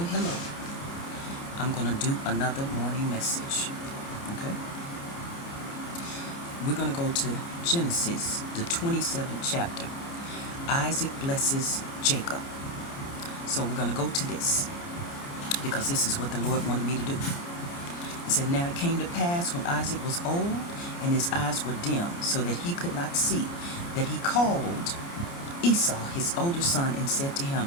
hello. I'm going to do another morning message. Okay? We're going to go to Genesis, the 27th chapter. Isaac blesses Jacob. So we're going to go to this because this is what the Lord wanted me to do. It said, "Now it came to pass when Isaac was old and his eyes were dim, so that he could not see, that he called Esau, his older son, and said to him,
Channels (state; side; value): late; right; 29 ms